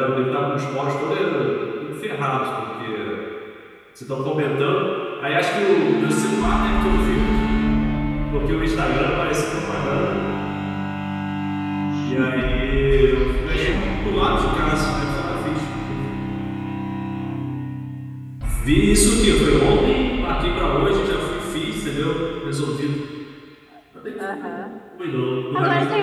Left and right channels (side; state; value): both; identical; correlation 1.00